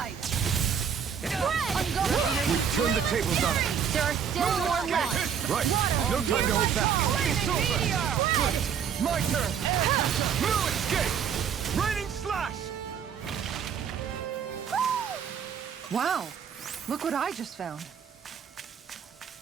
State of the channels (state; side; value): quieter; left; 7.7 dB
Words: We turned the tables on him. There are still more left! Right. No time to hold back. It's over! Good! My turn! No escape! Raining slash! Wow. Look what I just found.